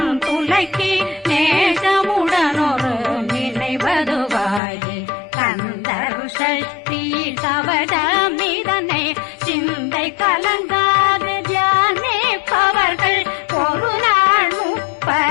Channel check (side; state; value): right; drops out; at 4.6 s